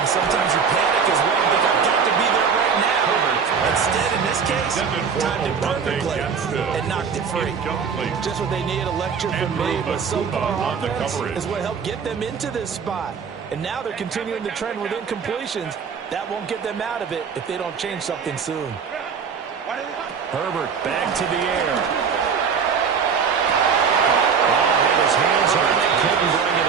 sometimes you panic as well and think, I've got to be there right now. Instead, in this case, timed it perfectly and knocked it free. Just what they need, a lecture from me, but so far offense is what helped get them into this spot. And now they're continuing the trend with incompletions. That won't get them out of it if they don't change something soon. Herbert back to the air. Oh, and his hands on it. Couldn't bring it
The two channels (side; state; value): left; quieter; 6.2 dB